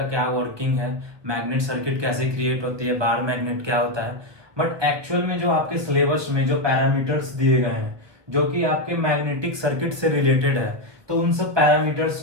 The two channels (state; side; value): late; left; 1.4 ms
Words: क्या वर्किंग है, मैग्नेट सर्किट कैसे क्रिएट होती है, बार मैग्नेट क्या होता है। बट एक्चुअल में जो आपके सिलेबस में जो पैरामीटर्स दिए गए हैं जो कि आपके मैग्नेटिक सर्किट से रिलेटेड है, तो उन सब पैरामीटर्स